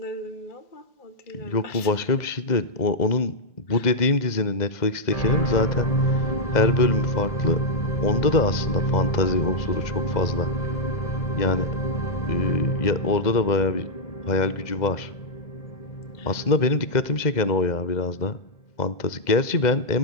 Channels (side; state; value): right; late; 2.0 ms